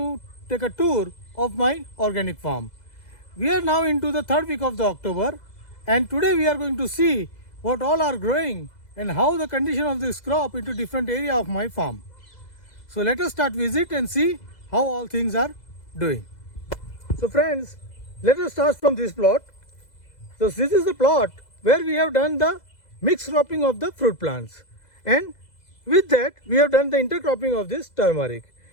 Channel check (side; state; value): right; late; 2.0 ms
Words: take a tour of my organic farm. We are now into the third week of the October and today we are going to see what all are growing and how the condition of this crop into different area of my farm. So let us start visit and see how all things are doing. So friends, let us start from this plot. So this is the plot where we have done the mixed cropping of the fruit plants, and with that we have done the intercropping of this turmeric.